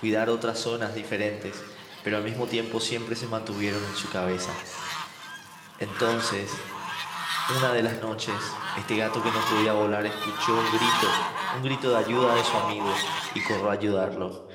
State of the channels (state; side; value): identical; both; correlation 1.00